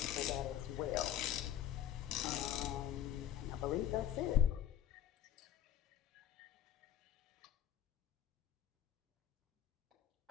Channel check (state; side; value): quieter; right; 11.7 dB